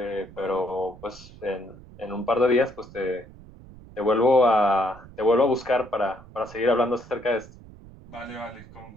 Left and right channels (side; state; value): right; noise; rumble, 20 dB below the sound